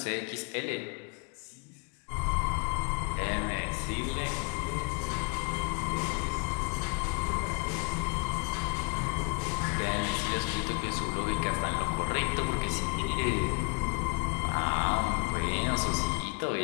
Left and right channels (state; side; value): quieter; right; 33.7 dB